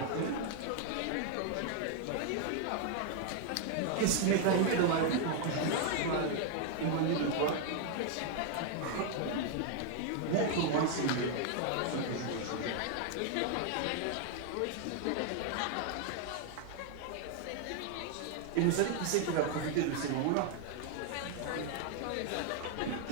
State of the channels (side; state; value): both; different; correlation 0.00